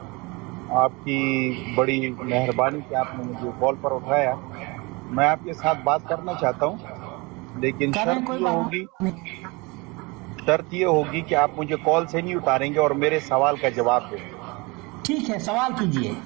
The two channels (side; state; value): left; quieter; 26.2 dB